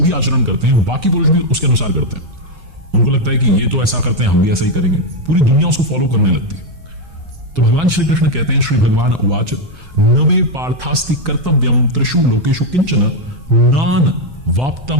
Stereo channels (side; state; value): left; late; 5.5 ms